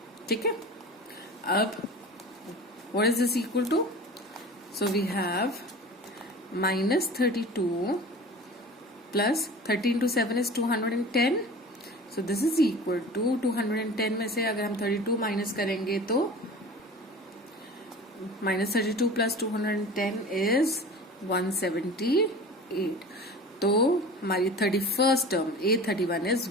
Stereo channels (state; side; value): normal; both; correlation 0.37